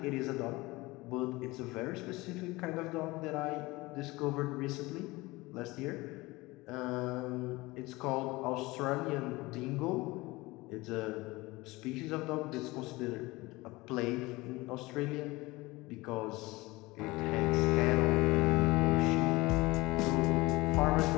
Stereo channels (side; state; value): right; quieter; 21.6 dB